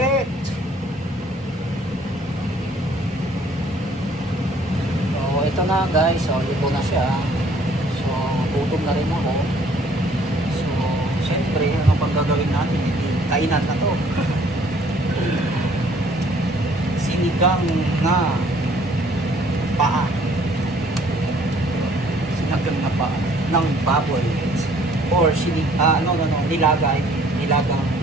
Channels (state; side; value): normal; both; correlation 0.59